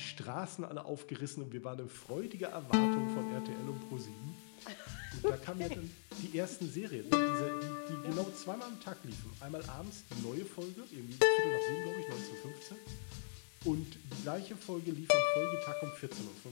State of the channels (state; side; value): silent; right; digital silence